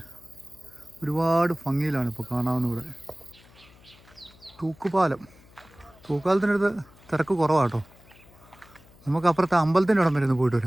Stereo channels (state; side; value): noise; left; hum, 25 dB below the sound